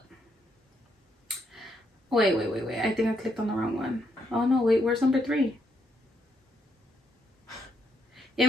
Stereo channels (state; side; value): normal; both; correlation 0.76